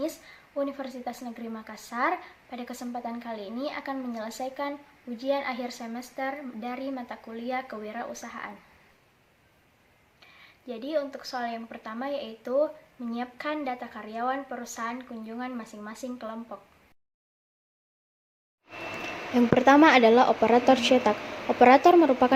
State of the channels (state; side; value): identical; both; correlation 1.00